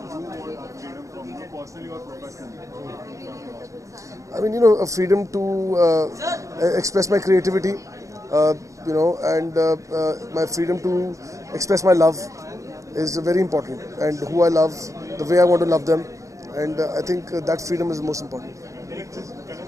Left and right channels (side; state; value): left; late; 0.15 ms